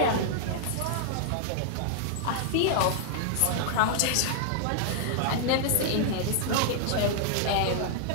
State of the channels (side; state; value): both; different; correlation -0.01